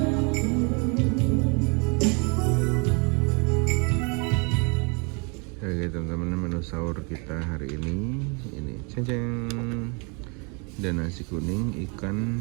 Oke teman-teman, menu sahur kita hari ini ceng-ceng, dan nasi kuning, ikan,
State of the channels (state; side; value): quieter; left; 33.4 dB